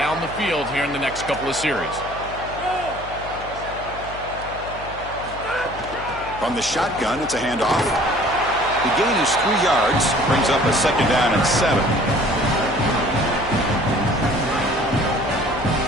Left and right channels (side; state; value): left; noise; hum, 15 dB below the sound